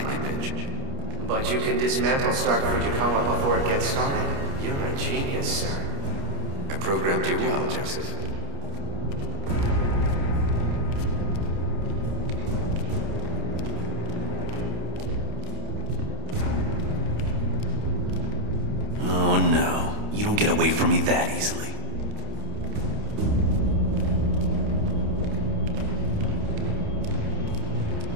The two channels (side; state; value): left; late; 29 ms